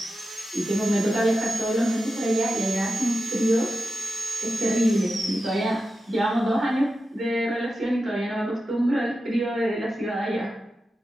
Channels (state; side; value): normal; both; correlation 0.92